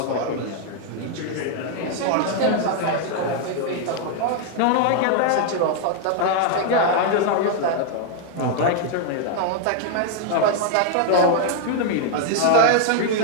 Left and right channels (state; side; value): different; both; correlation 0.00